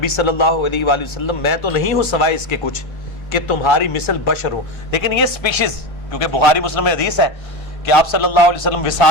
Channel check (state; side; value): late; right; 1.3 ms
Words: صلی اللہ علیہ وآلہ وسلم میں تو نہیں ہوں سوائے اس کے کچھ کہ تمہاری مثل بشر ہوں۔ لیکن یہ اسپیشیز، کیونکہ بخاری مسلم میں حدیث ہے کہ آپ صلی اللہ علیہ وسلم